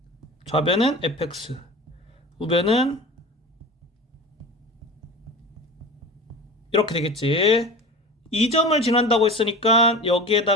좌변은 fx, 우변은 이렇게 되겠지. 이 점을 지난다고 했으니까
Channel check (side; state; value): both; normal; correlation 0.33